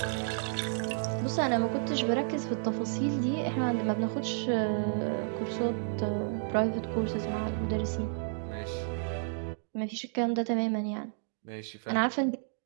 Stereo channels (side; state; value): left; silent; digital silence